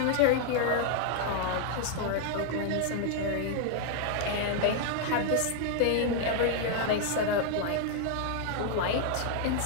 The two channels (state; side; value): different; both; correlation 0.00